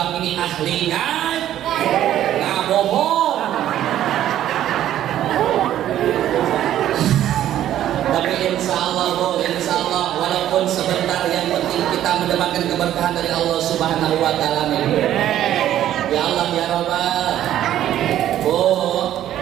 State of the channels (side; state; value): left; quieter; 12.0 dB